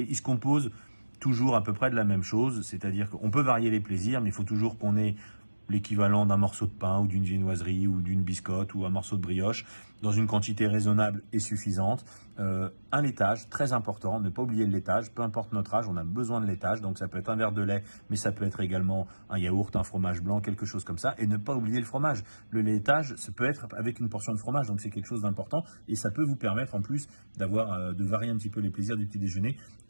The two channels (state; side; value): inverted; both; correlation -1.00